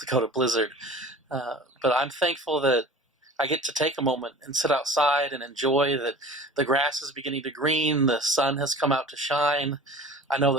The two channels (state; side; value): normal; both; correlation 0.41